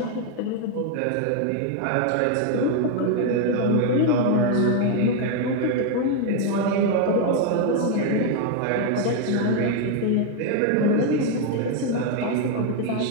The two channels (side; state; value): both; different; correlation 0.01